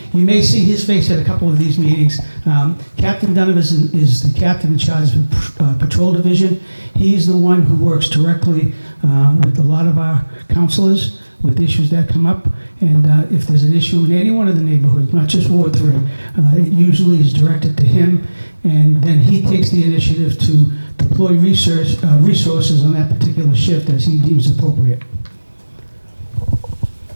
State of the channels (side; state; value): both; inverted; correlation -1.00